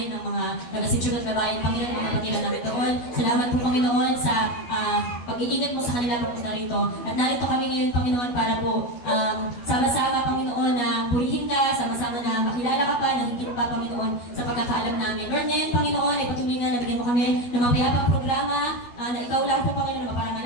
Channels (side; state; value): right; late; 12 ms